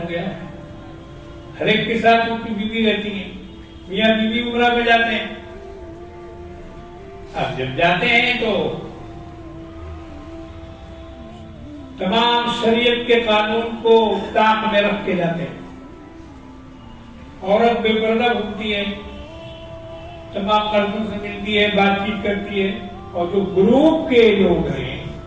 گیا ہے. ہر ایک کے ساتھ ان کی بیوی رہتی ہے، میاں بیوی عمرہ پہ جاتے ہیں. اب جب جاتے ہیں تو تمام شریعت کے قانون کو طاق میں رکھ کے جاتے ہیں. عورت بے پردہ گھومتی ہے، تمام مردوں سے ملتی ہے، بات چیت کرتی ہے، اور جو گروپ کے لوگ ہیں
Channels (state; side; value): identical; both; correlation 1.00